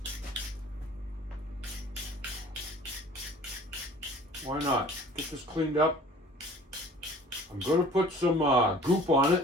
Why not? Get this cleaned up. I'm going to put some goop on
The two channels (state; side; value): normal; both; correlation 0.48